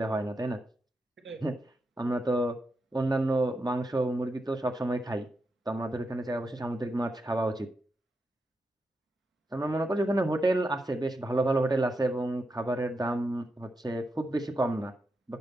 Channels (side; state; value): both; normal; correlation 0.86